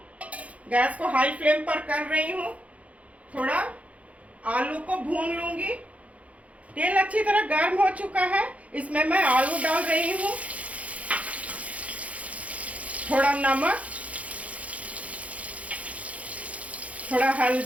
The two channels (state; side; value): late; left; 0.066 ms